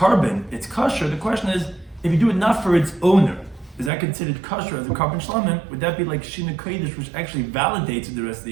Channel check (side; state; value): left; drops out; at 3.9 s